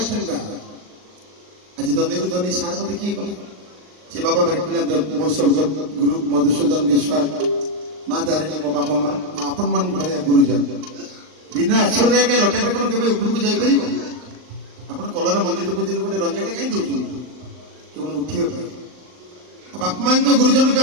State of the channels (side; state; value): left; late; 39 ms